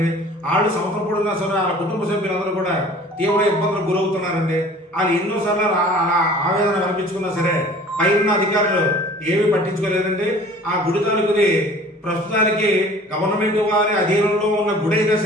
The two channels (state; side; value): normal; both; correlation 0.47